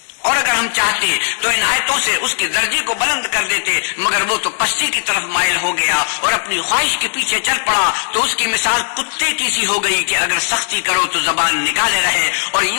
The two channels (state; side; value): silent; right; 69 dB below the other